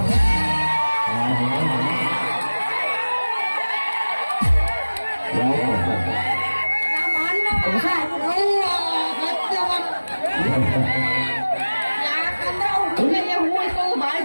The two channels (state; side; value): inverted; both; correlation -1.00